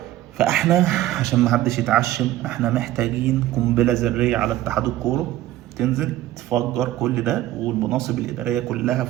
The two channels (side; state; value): left; quieter; 14.4 dB